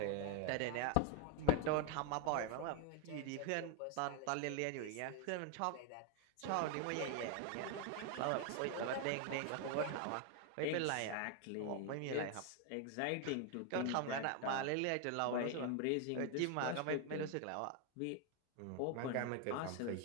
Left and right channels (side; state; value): both; different; correlation 0.01